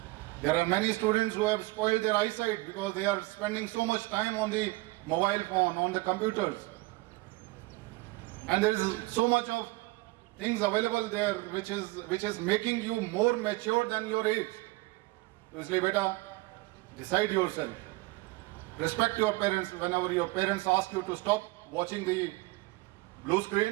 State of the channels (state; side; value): quieter; left; 22.4 dB